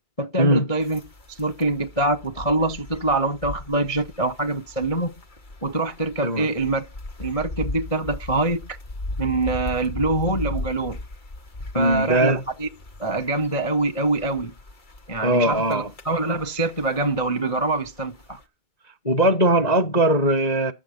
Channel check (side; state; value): right; late; 2.3 ms